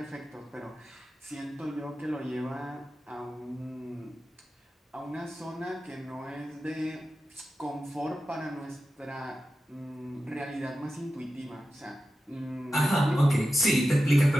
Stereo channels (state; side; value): normal; both; correlation 0.92